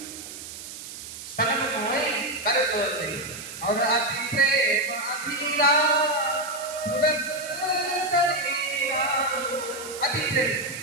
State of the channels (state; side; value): noise; right; hiss, 12 dB below the sound